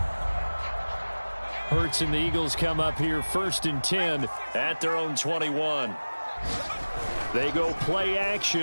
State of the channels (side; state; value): both; inverted; correlation -1.00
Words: Hurts and the Eagles come up here 1st and 10 at their own 21. They go play